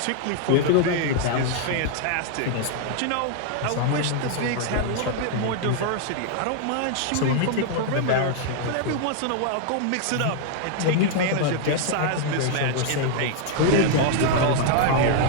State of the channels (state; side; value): different; both; correlation 0.00